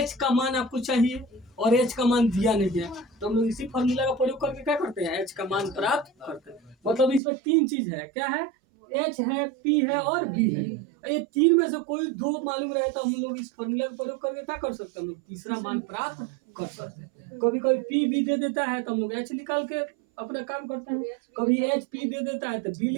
का मान आपको चाहिए और एच का मान दिया नहीं है, तो हम लोग इसी फॉर्मूला का प्रयोग करके क्या करते हैं, एच का मान प्राप्त करते हैं। मतलब इसमें 3 चीज है, क्या है, एच है, पी है और बी है। ये 3 में से कोई 2 मालूम रहे तो हम लोग इस फॉर्मूला का प्रयोग करके क्या कर सकते हैं, हम लोग तीसरा मान प्राप्त कर सकते हैं। कभी कभी पी बी दे देता है तो हम लोग एच निकाल के अपना काम करते हैं, कभी एच पी दे देता है तो बी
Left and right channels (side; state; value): left; drops out; at 7.2 s